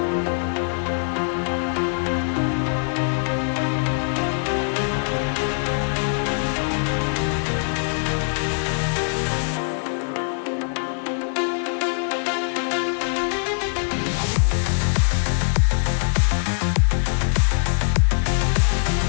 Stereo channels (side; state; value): right; silent; digital silence